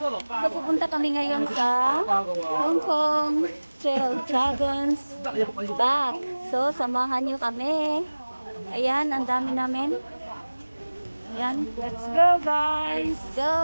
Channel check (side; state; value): both; inverted; correlation -1.00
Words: kami ngayon sa Hong Kong Trail Dragons Back. So, samahan nyo kami. Ayan, ang dami namin. Ayan, let's go guys!